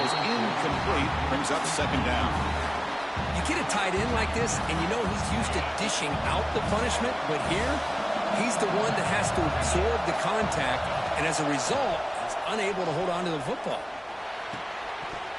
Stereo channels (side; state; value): both; identical; correlation 1.00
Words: incomplete, brings up 2nd down. You get a tight end like this, and you know he's used to dishing out the punishment, but here, he's the one that has to absorb the contact, and as a result, he's unable to hold on to the football.